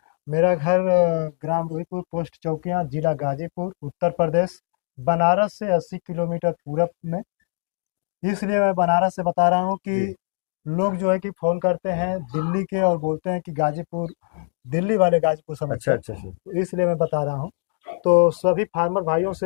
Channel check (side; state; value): right; silent; 61 dB below the other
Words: मेरा घर ग्राम रोहितपुर, पोस्ट चौकियां, जिला गाजीपुर, उत्तर प्रदेश। बनारस से 80 किलोमीटर पूरब में। इसलिए मैं बनारस से बता रहा हूँ जी। कि लोग जो है कि फ़ोन करते हैं दिल्ली के और बोलते हैं कि गाजीपुर, दिल्ली वाले गाजीपुर समझते अच्छा हैं। अच्छा सर। तो इसलिए मैं बता रहा हूँ। तो सभी फार्मर भाइयों